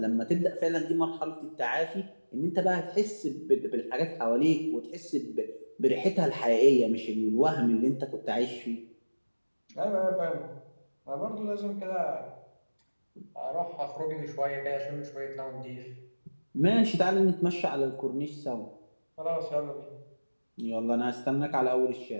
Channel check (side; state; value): both; inverted; correlation -1.00